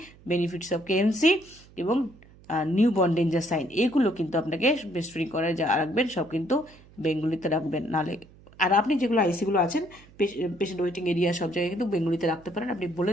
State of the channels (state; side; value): noise; right; hum, 24 dB below the sound